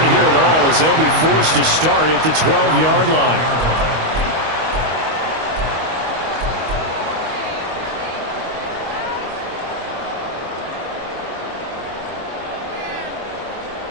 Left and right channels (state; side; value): late; left; 25 ms